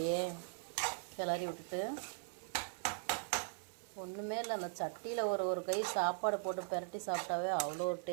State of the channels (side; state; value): left; silent; 51 dB below the other